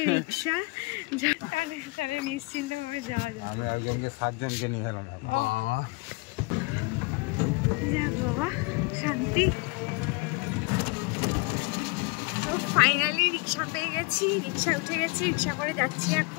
রিক্সা, তাহলে নিশ্চিন্তে ভাবে যাওয়া যায়। আমি একজনকে 7 জনকে নিয়ে এলাম। যাক বাবা, শান্তি। তো ফাইনালি রিক্সা পেয়ে গেছি, রিক্সা উঠে গেছি, রিক্সা করে যাচ্ছি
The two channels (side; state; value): right; quieter; 26.9 dB